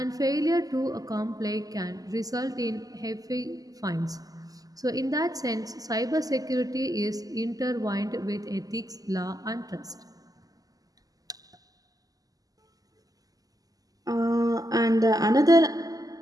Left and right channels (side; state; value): left; late; 0.17 ms